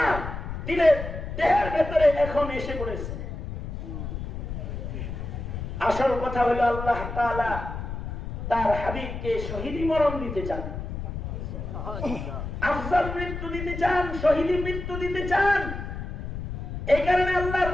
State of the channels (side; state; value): left; noise; rumble, 6 dB below the sound